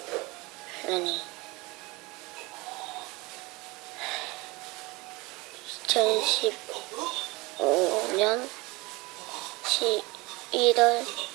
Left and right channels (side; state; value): left; quieter; 24.0 dB